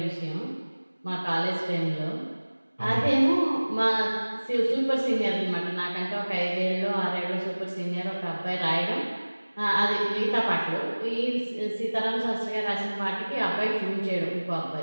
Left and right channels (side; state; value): both; inverted; correlation -1.00